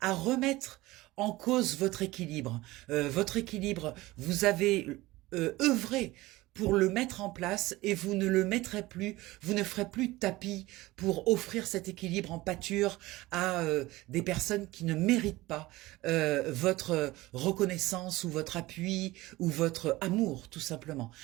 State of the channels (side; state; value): left; quieter; 19.1 dB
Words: à remettre en cause votre équilibre. Vous avez œuvré pour le mettre en place et vous ne le mettrez plus, vous ne ferez plus de tapis pour offrir cet équilibre en pâture à des personnes qui ne méritent pas votre reconnaissance ou votre appui ou votre amour, tout simplement.